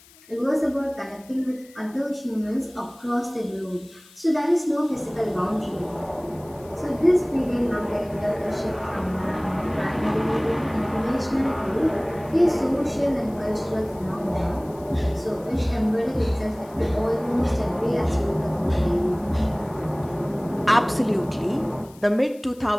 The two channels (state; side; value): noise; left; hiss, 25 dB below the sound